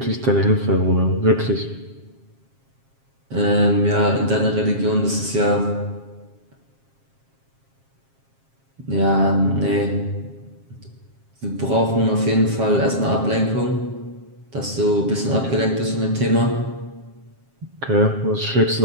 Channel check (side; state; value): left; late; 7.4 ms